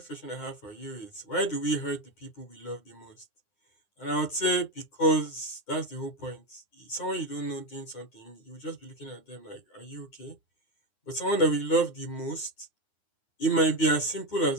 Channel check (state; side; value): late; right; 9.7 ms